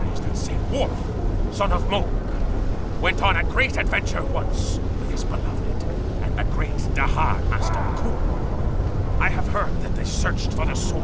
that say Worf, son of Moog, went on a great adventure once with his beloved and the great Dahar Master Kur. I have heard that they searched for the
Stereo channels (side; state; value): both; identical; correlation 1.00